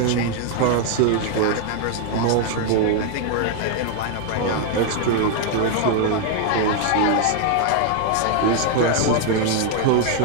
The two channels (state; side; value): different; both; correlation 0.00